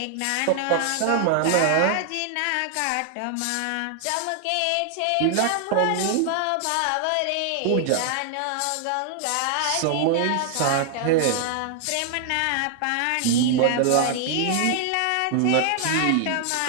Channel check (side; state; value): both; different; correlation 0.00